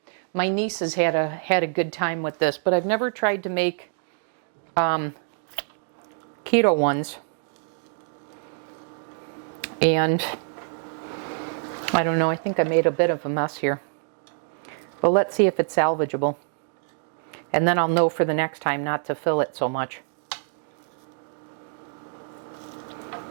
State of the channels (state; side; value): silent; left; digital silence